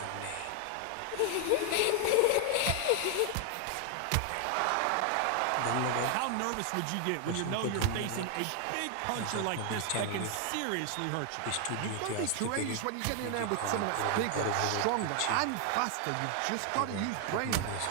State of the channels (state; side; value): different; both; correlation 0.00